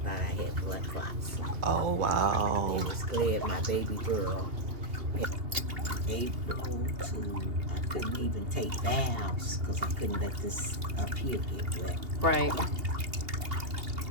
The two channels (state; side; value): late; left; 2.8 ms